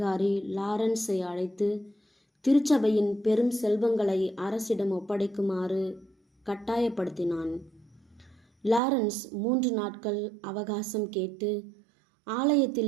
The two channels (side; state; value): left; drops out; at 8.8 s